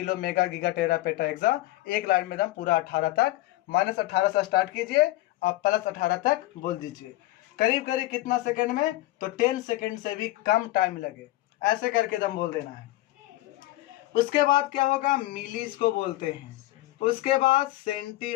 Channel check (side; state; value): right; quieter; 17.3 dB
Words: mega, giga, tera, peta, exa, एक लाइन में दम पूरा 18 तक, -18 से स्टार्ट कीजिए और +18 तक बोल दीजिए। करीब करीब कितना सेकंड में, तो 10 सेकंड से भी कम टाइम लगे, ऐसे करके दम बोल देना है। उसके बाद क्या होगा, मिली इसको बोलते हैं, उसके बाद सेंटी